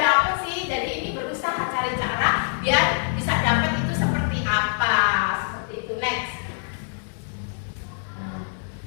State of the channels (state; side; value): silent; right; 60 dB below the other